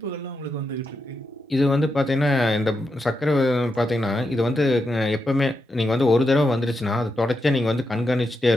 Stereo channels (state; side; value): normal; both; correlation 0.85